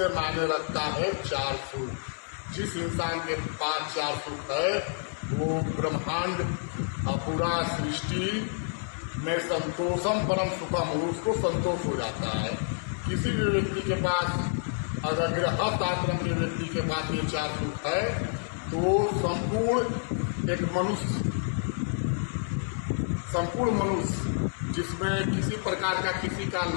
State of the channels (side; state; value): right; silent; 59 dB below the other